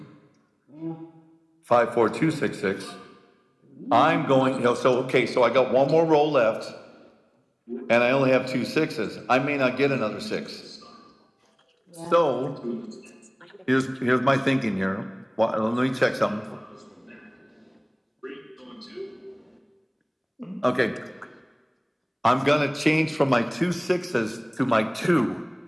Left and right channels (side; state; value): both; identical; correlation 1.00